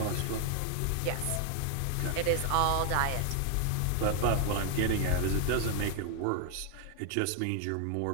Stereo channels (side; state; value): both; different; correlation 0.00